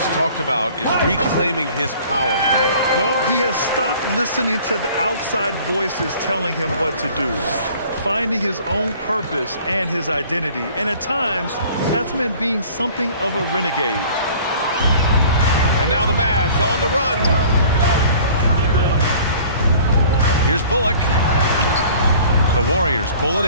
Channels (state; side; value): inverted; both; correlation -0.49